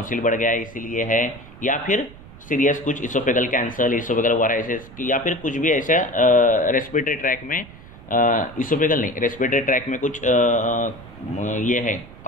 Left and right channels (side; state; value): right; noise; rumble, 19 dB below the sound